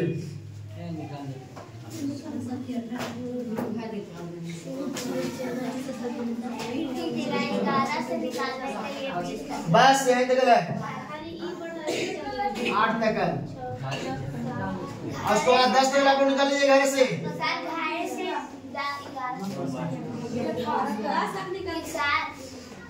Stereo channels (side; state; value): both; identical; correlation 1.00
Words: बस यही तक है, 8 तक है। उसको 10 तक आप लोग निकाल लीजिए घर से।